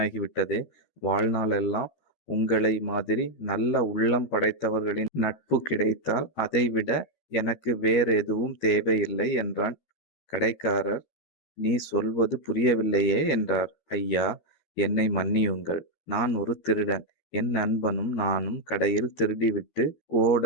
வாழ்நாளெல்லாம் உங்களை மாதிரி நல்ல உள்ளம் படைத்தவர்களின் நட்பு கிடைத்தால் அதைவிட எனக்கு வேறெதுவும் தேவையில்லை என்றான். கடைக்காரர், நீ சொல்வது புரியவில்லையே என்றார். ஐயா, என்னை மன்னியுங்கள். நான் ஒரு திருடன். என் நண்பனும் நானும் கடையில் திருடிவிட்டு ஓட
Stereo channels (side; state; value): right; late; 13 ms